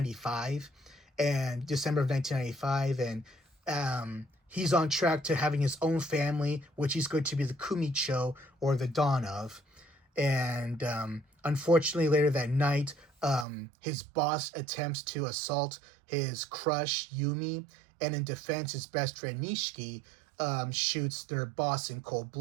and December of 1995, and he's on track to having his own family, which he's going to be the Kumicho, or the dawn of. And unfortunately, later that night, his boss attempts to assault his crush, Yumi, and in defense, his best friend, Nishiki, shoots their boss in cold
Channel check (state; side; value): drops out; left; at 13.5 s